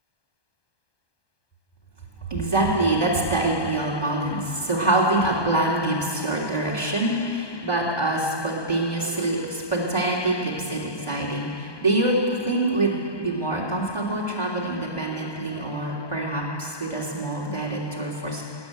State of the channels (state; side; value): late; right; 1.2 ms